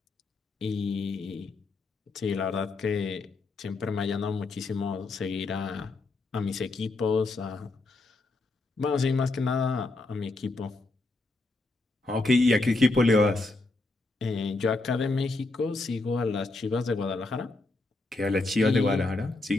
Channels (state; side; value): quieter; right; 3.3 dB